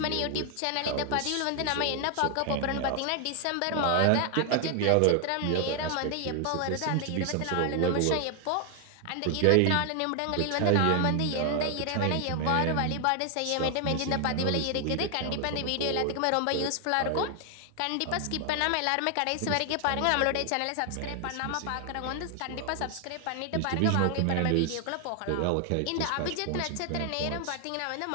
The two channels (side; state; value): both; different; correlation 0.00